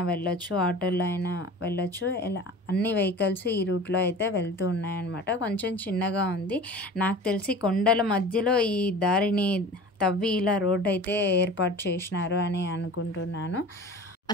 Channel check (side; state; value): both; normal; correlation 0.39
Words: వెళ్ళొచ్చు, ఆటోలో అయినా వెళ్ళొచ్చు. ఇలా అన్ని వెహికల్స్ ఈ రూట్లో అయితే వెళ్తూ ఉన్నాయన్నమాట. కొంచెం చిన్నగా ఉంది. నాకు తెలిసి కొండల మధ్యలో ఈ దారిని తవ్వి ఇలా రోడ్ అయితే ఏర్పాటు చేసినారు అని అనుకుంటున్నాను.